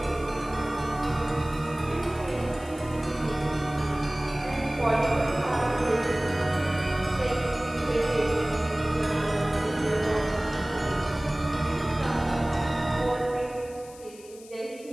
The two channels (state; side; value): noise; left; hiss, 21 dB below the sound